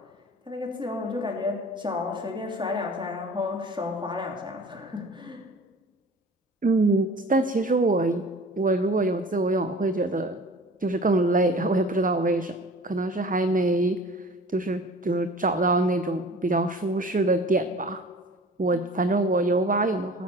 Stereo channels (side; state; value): both; normal; correlation 0.44